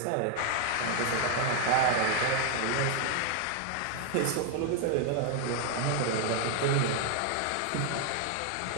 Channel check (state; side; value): different; both; correlation 0.00